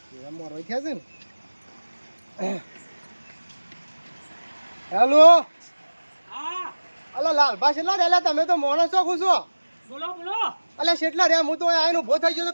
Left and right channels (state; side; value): inverted; both; correlation -1.00